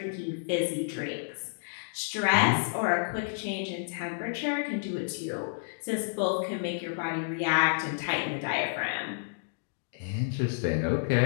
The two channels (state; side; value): silent; right; digital silence